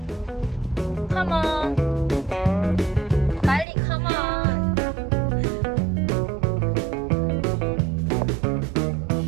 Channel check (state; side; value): drops out; left; at 3.7 s